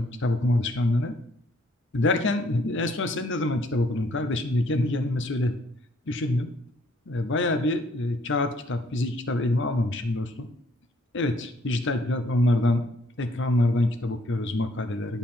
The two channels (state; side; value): normal; both; correlation 0.65